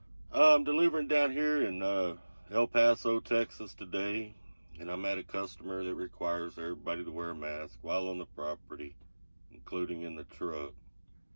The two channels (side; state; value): both; inverted; correlation -1.00